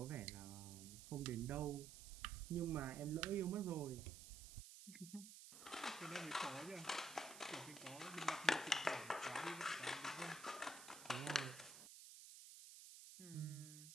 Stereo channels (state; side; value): noise; right; hiss, 12 dB below the sound